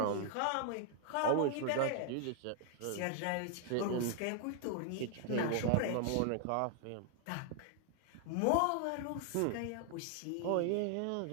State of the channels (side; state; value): both; different; correlation 0.00